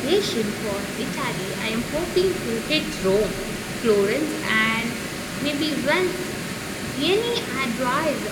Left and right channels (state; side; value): identical; both; correlation 1.00